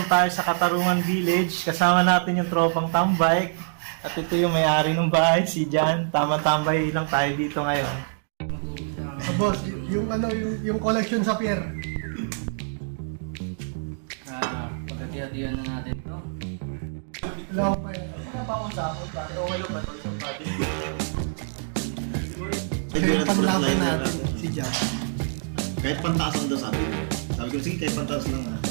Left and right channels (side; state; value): left; silent; digital silence